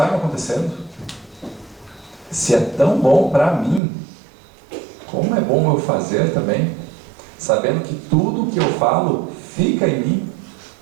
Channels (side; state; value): left; drops out; at 3.8 s